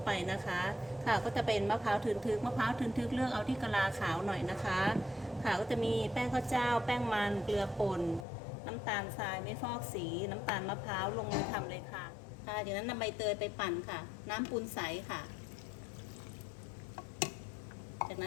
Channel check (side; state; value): right; drops out; at 8.2 s